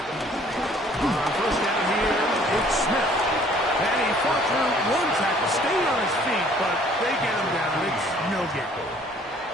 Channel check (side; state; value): both; normal; correlation 0.57